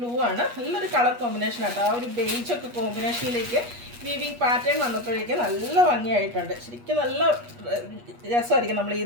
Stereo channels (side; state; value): left; late; 8.3 ms